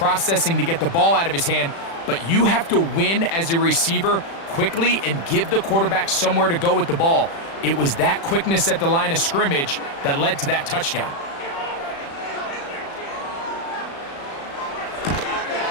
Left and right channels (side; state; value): right; late; 36 ms